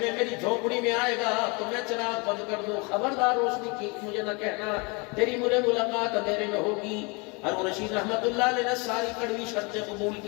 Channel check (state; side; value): quieter; right; 29.7 dB